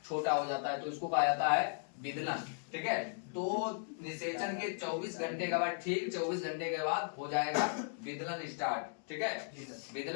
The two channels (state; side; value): silent; right; digital silence